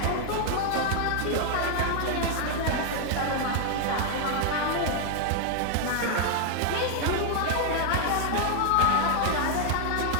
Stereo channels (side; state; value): both; different; correlation 0.00